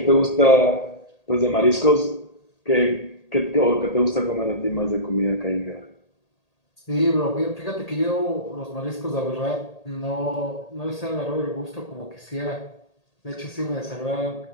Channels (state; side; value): late; right; 1.8 ms